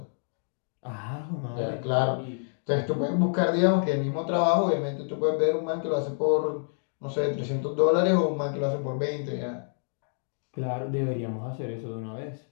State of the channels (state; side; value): silent; right; digital silence